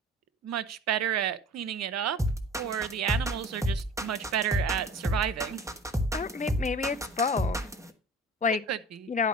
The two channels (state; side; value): normal; both; correlation 0.41